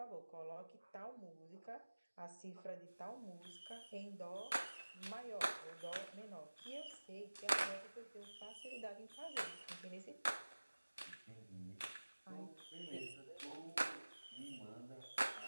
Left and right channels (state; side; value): inverted; both; correlation -1.00